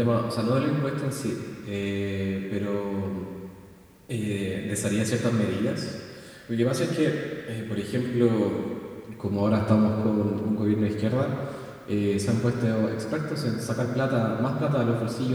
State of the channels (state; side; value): identical; both; correlation 1.00